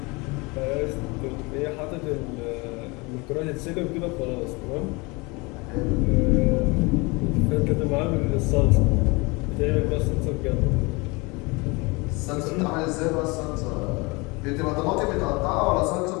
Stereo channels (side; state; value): right; quieter; 26.4 dB